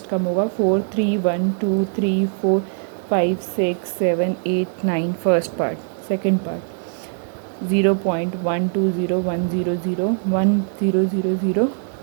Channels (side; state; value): left; silent; 63 dB below the other